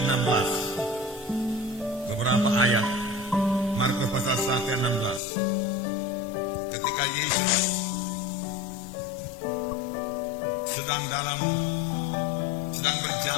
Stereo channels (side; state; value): right; drops out; at 5.2 s